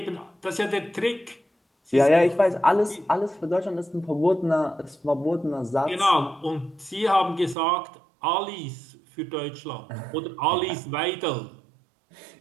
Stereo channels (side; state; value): left; drops out; at 7.6 s